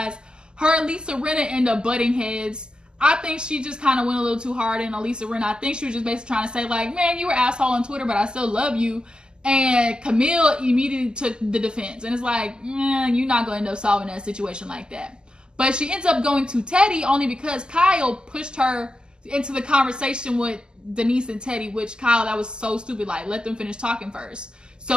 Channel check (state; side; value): late; left; 0.047 ms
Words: Her and Lisa Rinna end up butting heads. I think she just kind of went a little too hard in Lisa Rinna. I think she was just basically trying to say like, man, you were an asshole on Twitter, but I still love you. And Camille immediately took the defense. And it's like, you're not going to end up solving that situation like that. But she ends up going to Teddy only because Kyle pushed her into the conversation with Denise and Teddy, which Kyle, that was so stupid. Like, let them finish talking first.